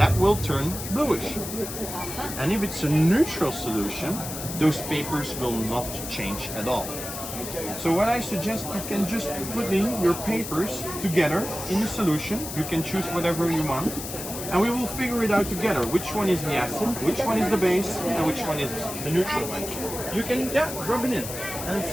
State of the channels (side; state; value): left; noise; hiss, 8 dB below the sound